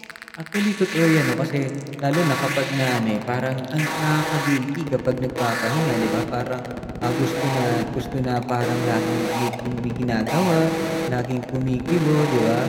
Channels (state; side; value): identical; both; correlation 1.00